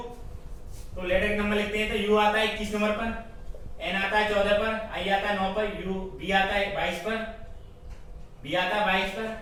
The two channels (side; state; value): both; identical; correlation 1.00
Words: तो लेटर के नंबर लिखते हैं तो U आता है 21 नंबर पर, N आता है 14 पर, I आता है 9 पर, B आता है 22 पर, B आता है 22 पर,